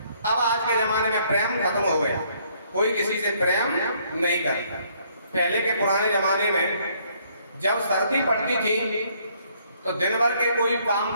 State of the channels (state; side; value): inverted; both; correlation -0.66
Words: अब आज के जमाने में प्रेम खत्म हो गया, कोई किसी से प्रेम नहीं करता। पहले के पुराने जमाने में जब सर्दी पड़ती थी तो दिन भर के कोई काम